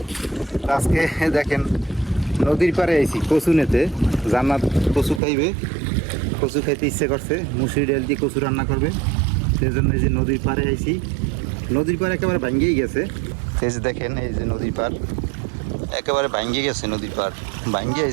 আজকে দেখেন নদীর পাড়ে আইছি কচু নিতে। জান্নাত কচু খাইবে, কচু খাইতে ইচ্ছে করছে, মুসুরি ডাল দিয়ে কচু রান্না করবে। সেই জন্য এই যে নদীর পাড়ে আইছি। নদীর পাড় একেবারে ভাঙ্গিয়ে গেছে। এই যে দেখেন, এই যে নদীর পাড় একেবারে ভাঙ্গিয়ে গেছে। নদীর পাড় ভাঙ্গিয়ে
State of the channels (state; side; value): drops out; left; at 5.2 s